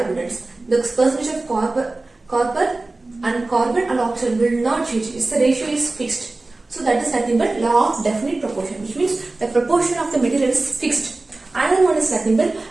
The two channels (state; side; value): quieter; left; 3.1 dB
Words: the percentage of copper and carbon and oxygen will not change. The ratio is fixed. So that is nothing but law of definite proportion, which means the proportion of the material is fixed. Another one is nothing but